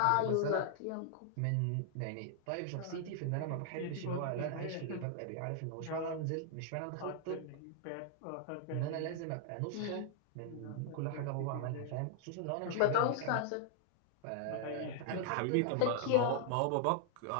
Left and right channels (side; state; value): both; different; correlation 0.00